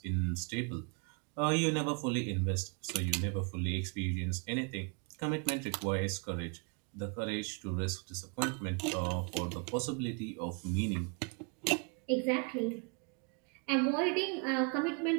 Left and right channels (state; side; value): quieter; left; 34.5 dB